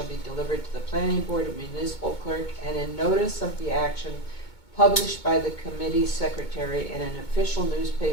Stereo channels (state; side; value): late; right; 2.2 ms